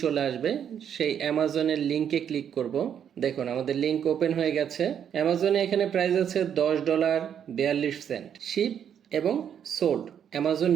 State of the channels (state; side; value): quieter; left; 8.7 dB